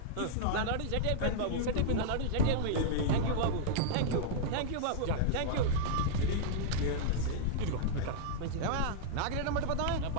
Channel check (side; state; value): both; different; correlation -0.02